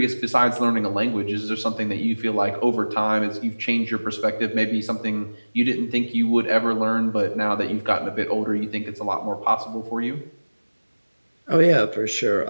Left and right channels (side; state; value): both; inverted; correlation -1.00